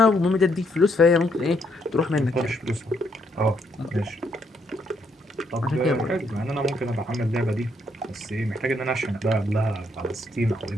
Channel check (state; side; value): normal; both; correlation 0.73